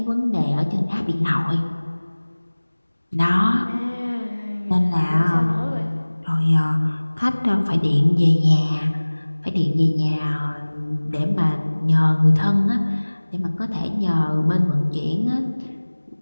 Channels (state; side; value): inverted; both; correlation -1.00